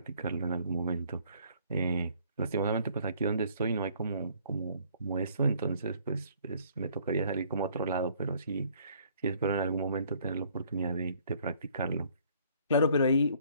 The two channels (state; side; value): inverted; both; correlation -0.61